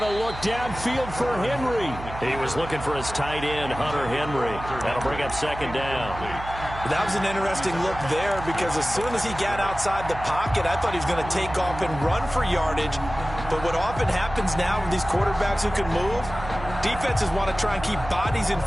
to look downfield for Henry. He was looking for his tight end, Hunter Henry. That'll bring up 2nd down. That was an interesting look there because as soon as he got outside the pocket, I thought he was going to take off and run for yardage. But what often happens now with these quarterbacks who can move, defenses want to try and keep bodies in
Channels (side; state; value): right; noise; hum, 11 dB below the sound